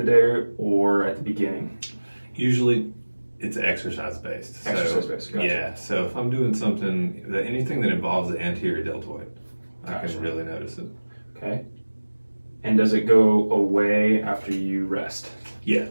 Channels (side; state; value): both; inverted; correlation -1.00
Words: day or at the beginning? Usually it's exercise based. Exercise based, gotcha. Yeah, so if I'm doing something, anything that involves the anterior deltoid, I can really notice it. Okay. And does it go away after you rest? Yeah.